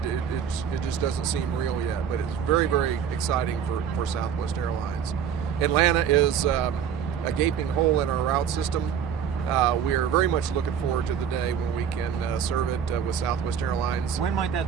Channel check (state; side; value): quieter; left; 8.1 dB